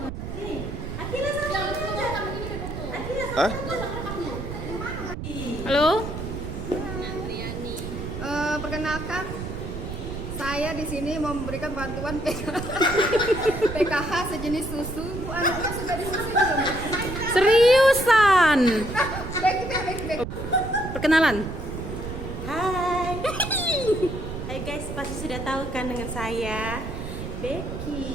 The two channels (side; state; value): right; noise; rumble, 7 dB below the sound